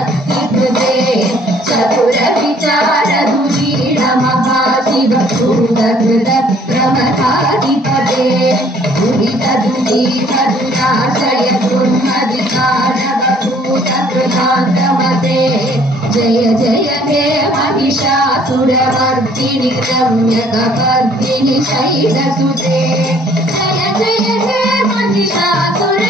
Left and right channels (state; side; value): normal; both; correlation 0.59